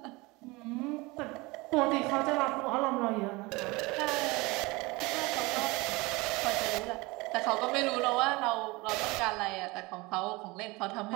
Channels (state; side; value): quieter; left; 23.7 dB